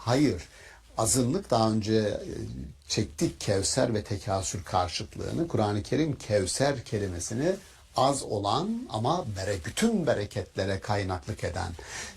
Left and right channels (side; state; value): both; identical; correlation 1.00